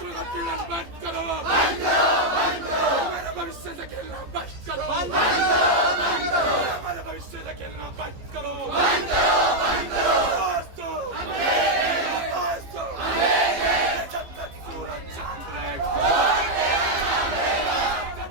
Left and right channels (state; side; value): late; left; 15 ms